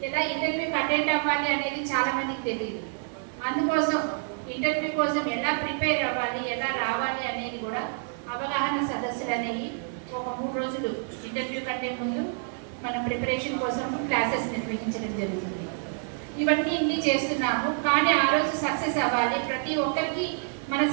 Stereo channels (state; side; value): silent; left; 60 dB below the other